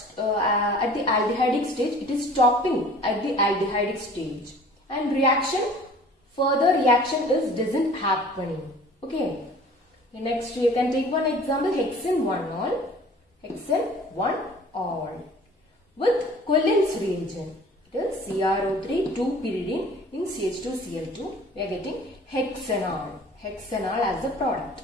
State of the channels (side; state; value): both; normal; correlation 0.47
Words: at the aldehydic stage it is stopping at the aldehydic stage and further reaction doesn't happening. Okay. Next you can take one example, hexane 1-ol. Hexane 1-ol with Cullen's reagent. It is CrO3 2-pyridine in CH2Cl2. We are getting hexanol. Hexanol as a product.